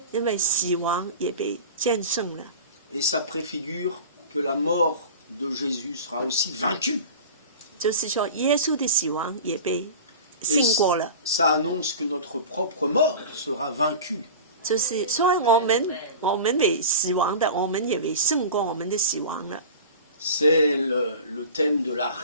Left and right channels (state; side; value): inverted; both; correlation -0.34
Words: 因为死亡也被战胜了。 Et ça préfigure que la mort de Jésus sera aussi vaincue. 就是说，耶稣的死亡也被胜过了。 Ça annonce que notre propre mort sera vaincue. 就是说，我们为死亡的，我们也为胜过我们的死亡了。 C'est le thème de la